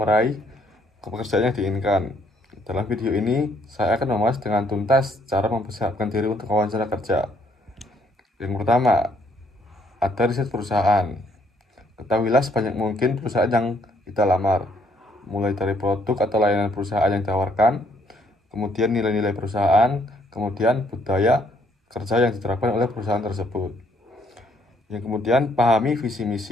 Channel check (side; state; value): both; normal; correlation 0.68